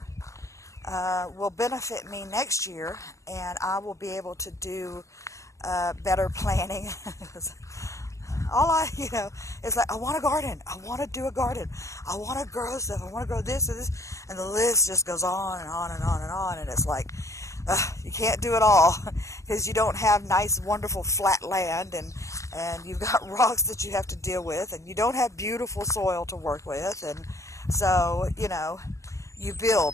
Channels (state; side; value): late; right; 0.15 ms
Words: will benefit me next year, and I will be able to do better planning. All I, you know, it's like, I want a garden. I want to do a garden. I want to grow stuff. I want to grow this and this. And the list just goes on and on and on and on. And it's like, you can't do it all because you don't have nice, wonderful flat land, and you've got rocks that you have to deal with, and you don't have beautiful soil to work with. And so, you know, you